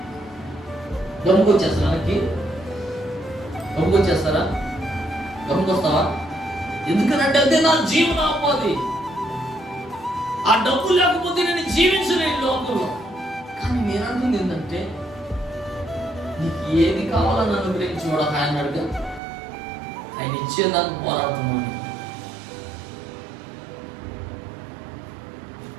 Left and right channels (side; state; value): left; drops out; at 19.2 s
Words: గమ్ముకొచ్చేస్తారా? గమ్ముకొచ్చేస్తారా? గమ్ముకొస్తావా? ఎందుకనంటే అదే నా జీవనోపాధి. ఆ డబ్బు లేకపోతే నేను జీవించలేను లోకంలో. కానీ నేను అంటుంది ఏంటంటే, నీకు ఏది కావాలని అనుగ్రహించుకోవడం ఆయన అడుగు, ఆయన ఇచ్చేదాన్ని పోరాడుతున్నాను.